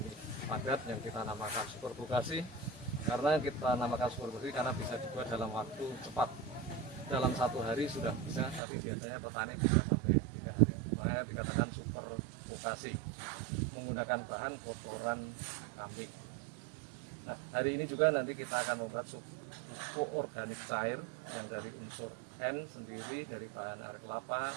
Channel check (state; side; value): drops out; left; at 8.6 s